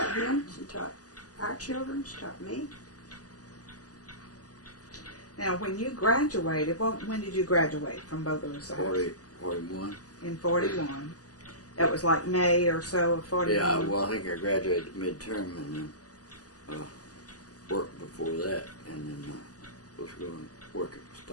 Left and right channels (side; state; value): right; late; 0.67 ms